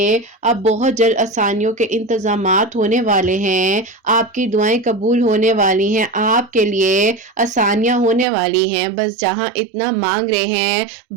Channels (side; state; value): left; drops out; at 8.2 s